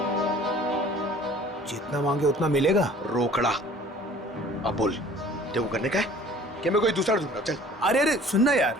जितना मांगे उतना मिलेगा। रोकड़ा। अब बोल, तेरे को करने का है कि मैं कोई दूसरा ढूंढूंगा? चल। अरे अरे सुनना यार,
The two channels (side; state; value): both; normal; correlation 0.50